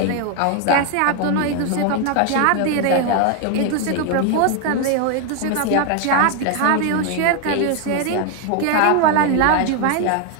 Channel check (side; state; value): both; different; correlation 0.01